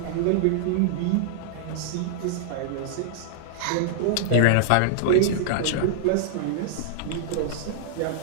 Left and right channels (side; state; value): both; different; correlation -0.01